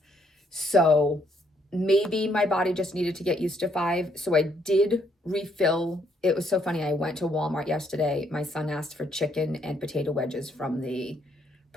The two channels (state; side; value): normal; both; correlation 0.70